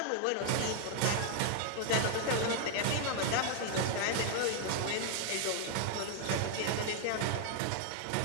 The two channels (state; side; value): different; both; correlation 0.00